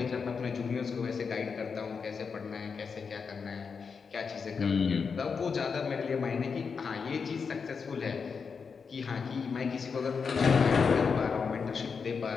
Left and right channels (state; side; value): quieter; right; 5.6 dB